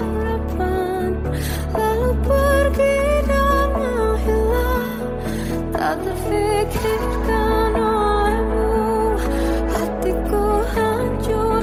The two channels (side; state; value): both; identical; correlation 1.00